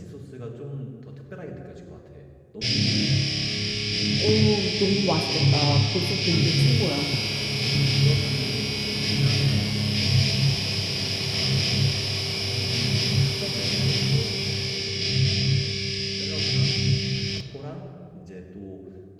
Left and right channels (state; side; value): identical; both; correlation 1.00